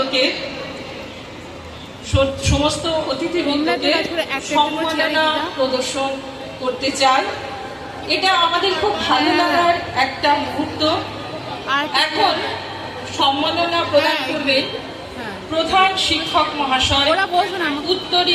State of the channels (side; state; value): both; identical; correlation 1.00